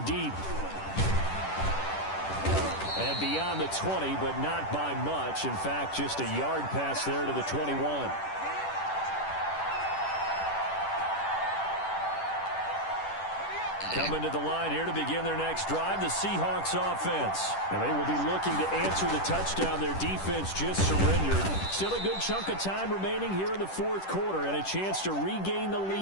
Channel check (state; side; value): late; right; 10 ms